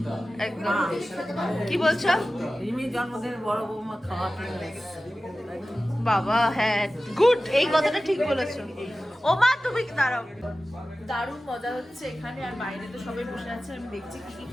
হবে একদম কি বলছো রিমির জন্মদিনের বড় বৌমা খাওয়াতে এসেছে। বাবা হ্যাঁ গুড এই কথাটা ঠিক বলেছো ও মা তুমি দাঁড়াও দারুণ মজা হচ্ছে এখানে আর বাইরে তো সবাই বসে আছে আমি দেখছি কি কি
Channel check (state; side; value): normal; both; correlation 0.95